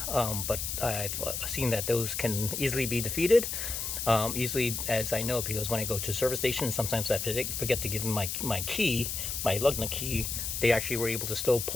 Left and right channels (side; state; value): left; noise; hiss, 3 dB below the sound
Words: but I've seen that those can easily be defeated. Easily, as I know, because when I go to service station, sometimes I forget to give them my key, my lug nut key. They actually were able to still